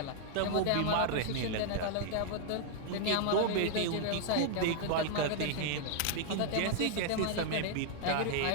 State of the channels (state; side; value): different; both; correlation 0.00